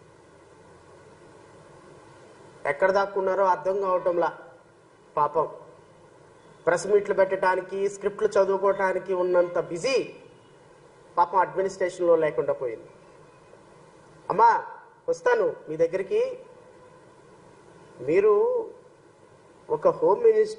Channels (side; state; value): both; identical; correlation 1.00